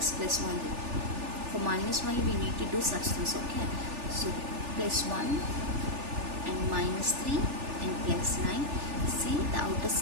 plus 1. For minus 1 we need to do such things, okay? So plus 1 and minus 3 and plus 9. See, the outer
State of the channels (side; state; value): left; late; 3.4 ms